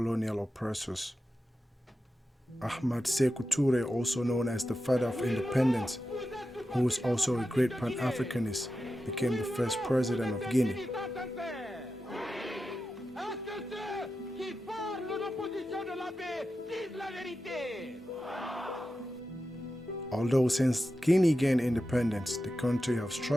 oppressors. Ahmad Sékou Touré, also known as the father of independence, who was also a great Pan-Africanist, became the first president of Guinea. Although since Guinea gained independence, the country has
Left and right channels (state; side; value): normal; both; correlation 0.91